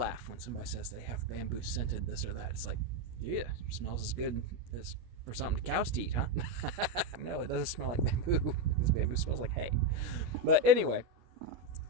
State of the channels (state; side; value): late; left; 17 ms